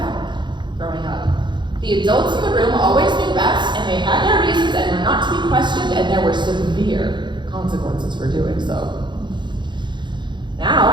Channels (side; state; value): left; late; 0.22 ms